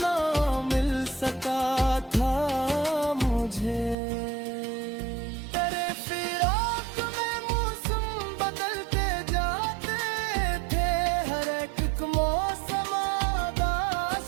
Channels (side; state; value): left; drops out; at 4.0 s